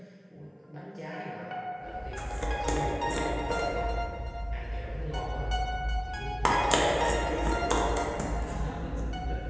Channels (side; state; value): both; identical; correlation 1.00